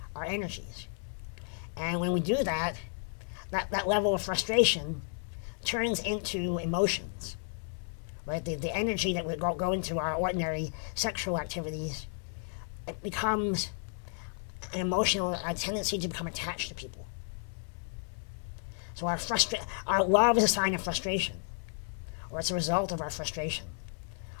our energies. And when we do that, that level of frustration turns into emotions, right? The energy that would go into our ordinary sexual activities, it becomes an emotional tendency to become attached to people. So our love is a sign of frustration, or it's a result of our frustration,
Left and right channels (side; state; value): right; silent; 56 dB below the other